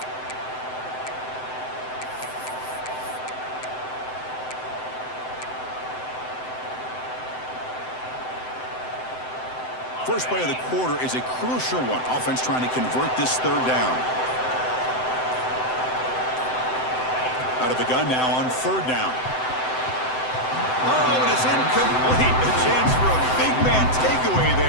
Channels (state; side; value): late; right; 7.8 ms